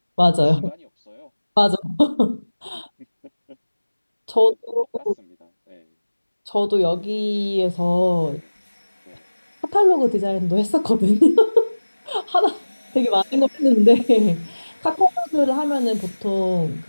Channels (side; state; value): both; inverted; correlation -1.00